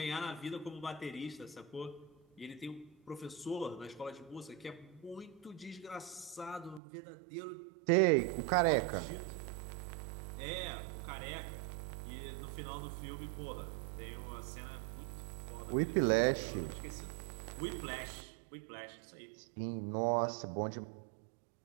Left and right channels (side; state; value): left; drops out; at 6.8 s